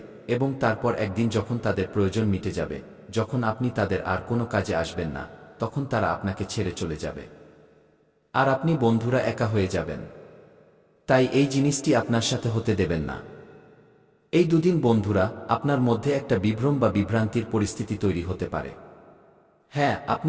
এবং তারপর একদিন যখন তাদের প্রয়োজন মিটে যাবে, যখন আপনি তাদের আর কোনো কাজে আসবেন না, তখন তারা আপনাকে ছেড়ে চলে যাবে। আর আপনি বন্ধুরা একা হয়ে যাবেন। তাই এই জিনিসটি আপনার সাথে হতে দেবেন না। এই দুদিন বন্ধুরা আপনার মধ্যে একটা বিভ্রম বা বিভ্রান্তির পরিস্থিতি তৈরি হতে পারে। হ্যাঁ,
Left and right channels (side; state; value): both; identical; correlation 1.00